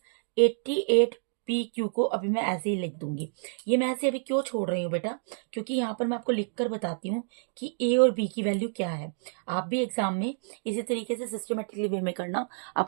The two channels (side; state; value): left; silent; digital silence